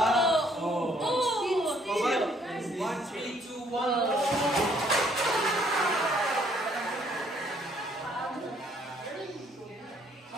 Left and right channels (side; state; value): both; normal; correlation 0.65